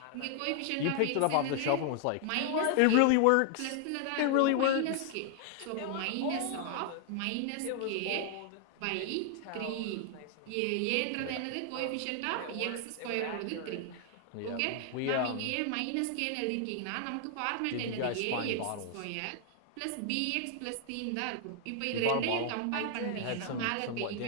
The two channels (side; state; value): both; different; correlation 0.00